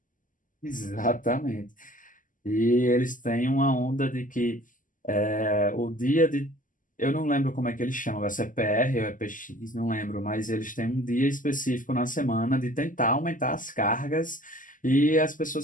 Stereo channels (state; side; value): late; right; 0.38 ms